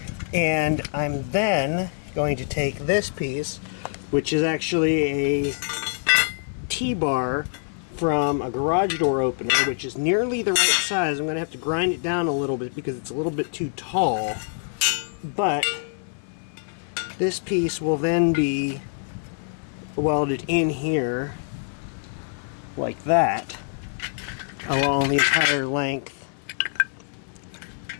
and I'm then going to take this piece, which is actually a T-bar from a garage door opener, which is nearly the right size. I'm going to have to grind it down a little bit because it's a little bit too tall, but this piece will then be welded in here like that along the entire length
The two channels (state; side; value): silent; right; 58 dB below the other